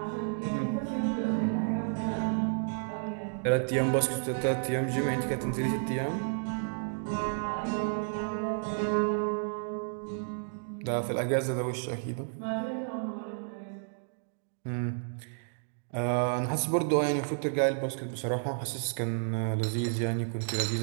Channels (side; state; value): left; silent; digital silence